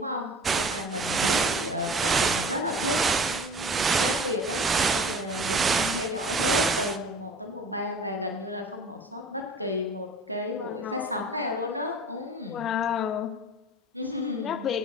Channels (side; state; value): both; normal; correlation 0.41